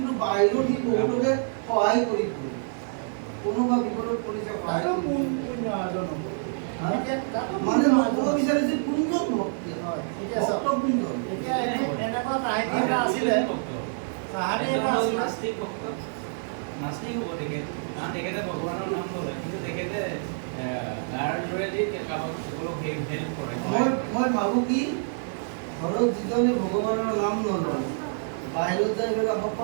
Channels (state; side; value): silent; left; 56 dB below the other